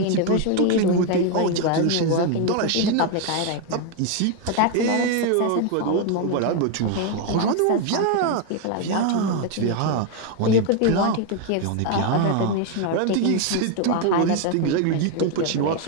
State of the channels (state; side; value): different; both; correlation 0.01